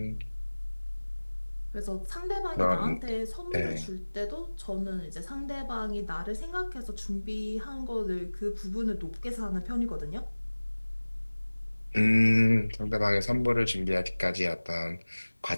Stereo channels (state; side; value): inverted; both; correlation -1.00